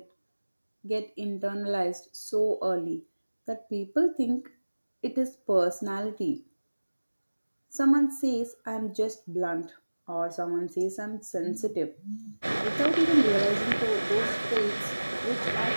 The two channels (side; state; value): both; inverted; correlation -1.00